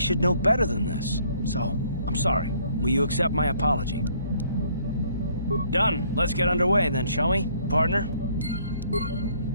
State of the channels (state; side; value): inverted; both; correlation -0.64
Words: know better than this. So, I'm sorry. Will you accept my apology? Done. Let's get underway then, shall we, partner?